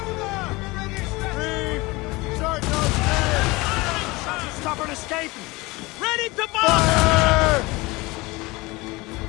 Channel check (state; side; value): quieter; right; 22.8 dB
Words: the British vessel! Start those sails! Stop her escaping! Ready to Fire!